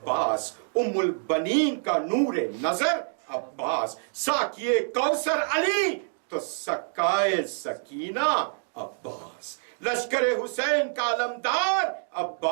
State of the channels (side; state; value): left; silent; digital silence